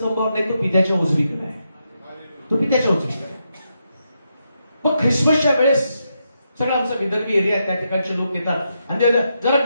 नाही, तो पित्याच्या उजवीकडे आहे. तो पित्याच्या उजवीकडे आहे. मग ख्रिसमसच्या वेळेस सगळं आमचा विदर्भी एरिया आहे, त्या ठिकाणचे लोक येतात आणि जरा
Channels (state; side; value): inverted; both; correlation -0.83